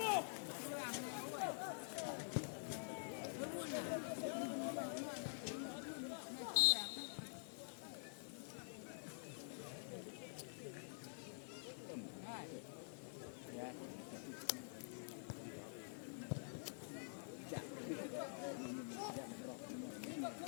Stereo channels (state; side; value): silent; right; digital silence